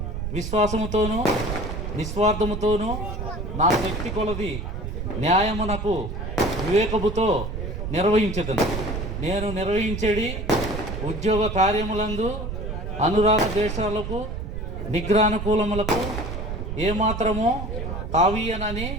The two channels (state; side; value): noise; right; rumble, 5 dB below the sound